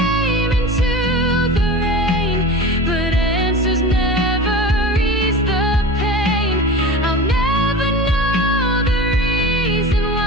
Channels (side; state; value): both; normal; correlation 0.32